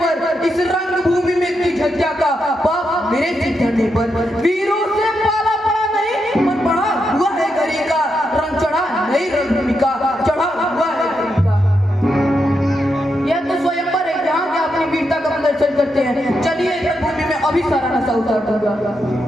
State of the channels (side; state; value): both; normal; correlation 0.83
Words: पर इस रंग भूमि में की झज्जा का बाप मेरे सिर धरने पर वीरों से पाला पड़ा नहीं मन पड़ा हुआ है गरी का रंग चढ़ा नई रणभूमि का चढ़ा हुआ है गरी का यह तो स्वयंवर है जहाँ के अपनी वीरता का प्रदर्शन करते हैं चलिए इस रणभूमि में अभी सारा नशा उतार दूंगा